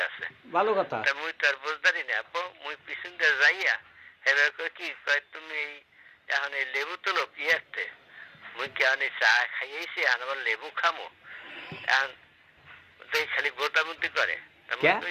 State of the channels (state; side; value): identical; both; correlation 1.00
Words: আছে। ভালো কথা। তা মুই তো আর বুঝদারি না আব্বু, মুই পিছন দিয়ে যাইয়া এবার কই কি কয় তুমি এই এখন এই লেবু তুলো কি আসতে, মুই কি এখন এই চা খাইয়েছি এখন আবার লেবু খামো, এখন তুই খালি গোটামুটি করে। তা মুই